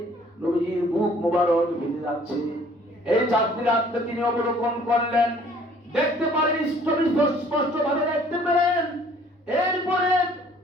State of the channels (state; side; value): normal; both; correlation 0.56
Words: নবীজির মুখ মোবারক ভিজে যাচ্ছে। এই চাঁদনি রাতকে তিনি অবলোকন করলেন, দেখতে পারেন, স্পষ্ট ভাবে দেখতে পেলেন। এরপরে